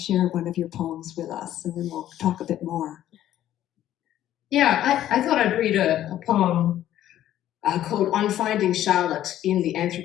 one of your poems with us, and then we'll talk a bit more. Yeah, I thought I'd read a poem called On Finding Charlotte in the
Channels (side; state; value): right; quieter; 12.4 dB